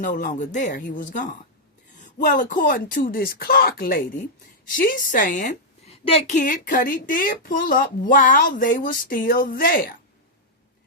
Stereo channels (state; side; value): normal; both; correlation -0.05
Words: longer there. He was gone. Well, according to this Clark lady, she's saying that Kid Cudi did pull up while they were still there.